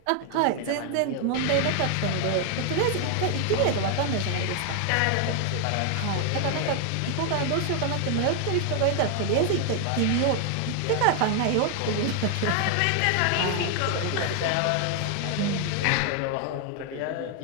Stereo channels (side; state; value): both; different; correlation 0.00